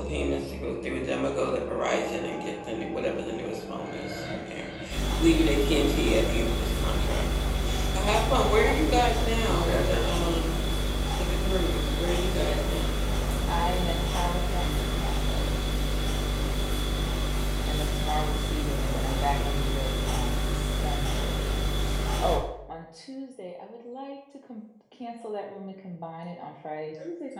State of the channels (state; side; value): identical; both; correlation 1.00